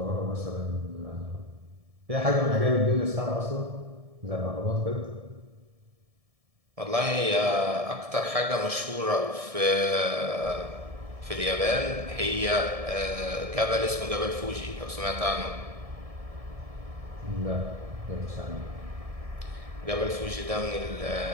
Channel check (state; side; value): late; left; 1.7 ms